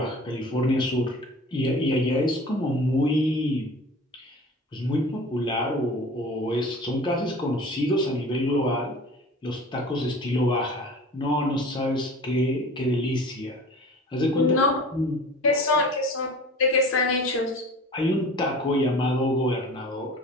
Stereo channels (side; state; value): both; normal; correlation 0.41